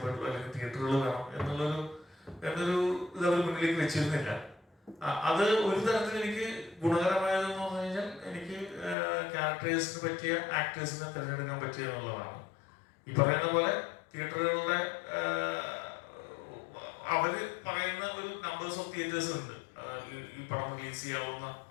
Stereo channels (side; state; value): right; drops out; at 9.0 s